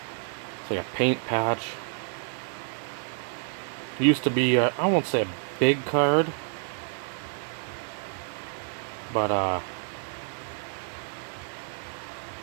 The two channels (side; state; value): left; silent; 59 dB below the other